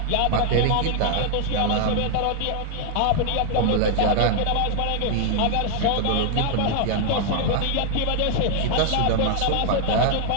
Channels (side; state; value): both; different; correlation 0.00